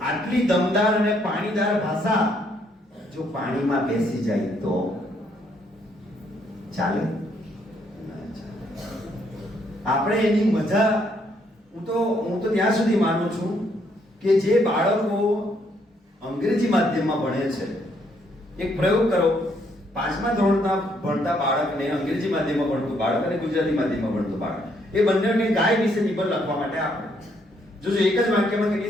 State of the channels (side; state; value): both; normal; correlation 0.71